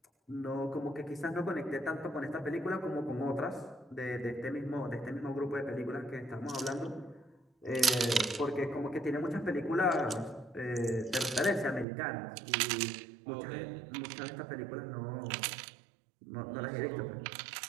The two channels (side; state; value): left; drops out; at 11.9 s